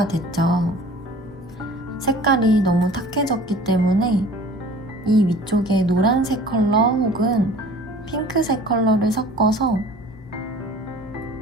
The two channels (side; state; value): both; normal; correlation 0.47